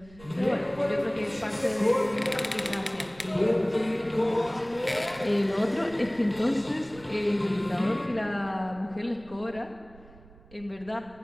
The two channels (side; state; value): right; noise; rumble, 22 dB below the sound